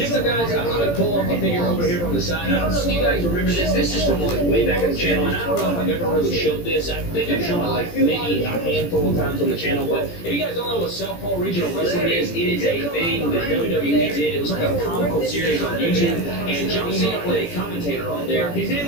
Next up, guys, I'm going to pull off a figure over here from the side. I don't know if you guys remember this. This is from like way back in the channel, and I don't know if I've ever really showed this. I think I've shown it like maybe a handful of times on the channel, but if you guys don't know what Southpaw Regional Wrestling is, it is a thing that WWE did. It was like a comical series on YouTube, and John Cena played a commentator on there. His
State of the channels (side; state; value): right; late; 17 ms